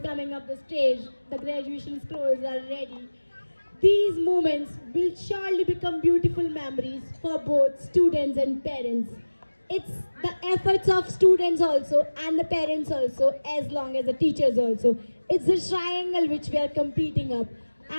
coming up the stage. The graduation scrolls are ready. These moments will surely become beautiful memories for both students and parents. It's the efforts of students also and the parents also, as long as the teachers also. It's the triangle which we are competing up.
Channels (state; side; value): inverted; both; correlation -1.00